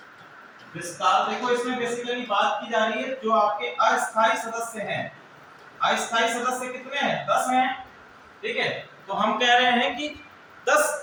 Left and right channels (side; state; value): both; identical; correlation 1.00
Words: विस्तार। देखो इसमें बेसिकली बात की जा रही है जो आपके अस्थायी सदस्य हैं। अस्थायी सदस्य कितने हैं? 10 हैं, ठीक है। तो हम कह रहे हैं कि 10